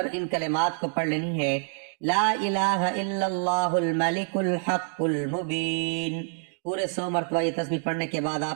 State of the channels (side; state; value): left; silent; 60 dB below the other